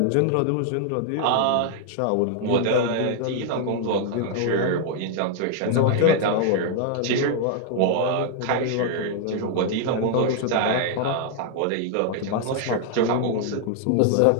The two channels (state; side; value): different; both; correlation 0.00